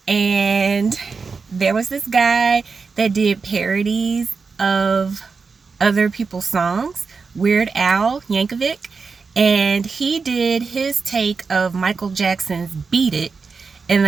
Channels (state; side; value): quieter; left; 4.9 dB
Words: and there was this guy that did parodies of other people's songs, Weird Al Yankovic, and he did his take of Michael Jackson's Beat It, and